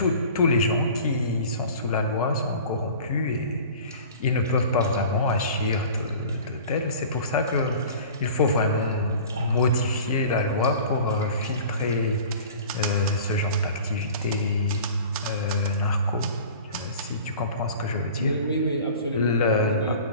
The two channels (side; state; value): both; inverted; correlation -0.42